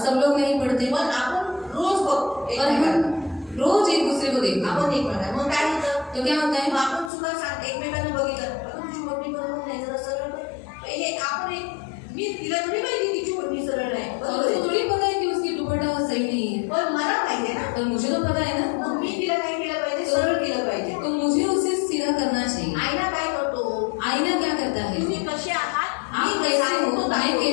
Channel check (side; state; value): right; drops out; at 7.1 s